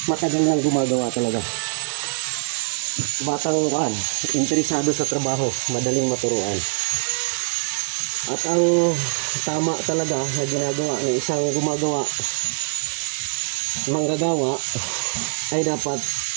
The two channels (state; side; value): silent; left; digital silence